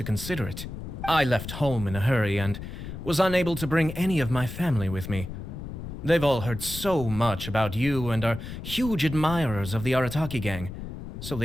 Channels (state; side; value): noise; left; rumble, 9 dB below the sound